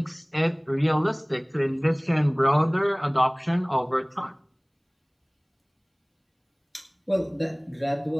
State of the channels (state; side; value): identical; both; correlation 1.00